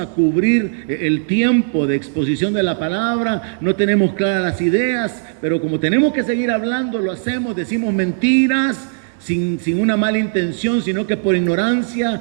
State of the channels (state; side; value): silent; left; digital silence